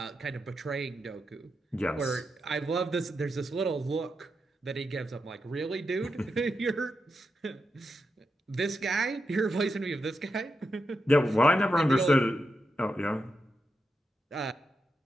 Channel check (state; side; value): normal; both; correlation 0.86